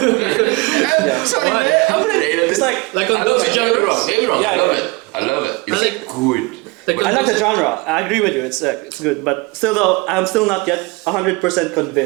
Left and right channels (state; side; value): quieter; left; 25.3 dB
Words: Sorry, Why? man. I played 8. It's like, Like on I love those it. Don't get me wrong. genres. Don't get me wrong. Yeah, I love yeah. it. I love it. It's like- good. Like I like the genre. I agree with you. It's good, but still though, I'm still not yet 100%